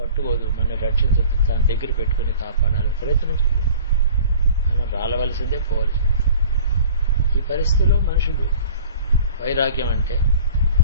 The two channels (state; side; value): inverted; both; correlation -0.46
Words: మనని రక్షించదు, దాని దగ్గర పెట్టుకుని కాపాడాలి, ప్రయత్నించదు. మనం రాలవలసిందే, పోవలసిందే. ఈ పరిస్థితిలో మనుషులు వైరాగ్యం అంటే